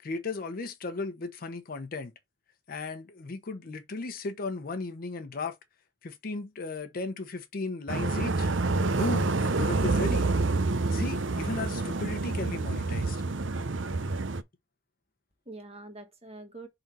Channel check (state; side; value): normal; both; correlation 0.51